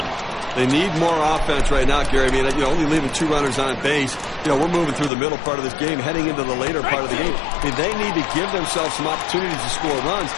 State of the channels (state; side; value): drops out; right; at 5.1 s